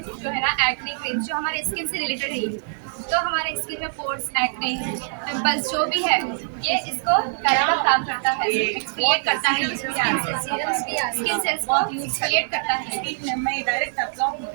जो है ना, एक्ने क्रीम जो हमारे स्किन से रिलेटेड है, तो हमारे स्किन में पोर्स, एक्ने, पिंपल्स जो भी है, ये इसको करने का काम करता है, एक्सफोलिएट करता है, स्किन सेल्स को एक्सफोलिएट करता है।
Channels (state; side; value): silent; left; 63 dB below the other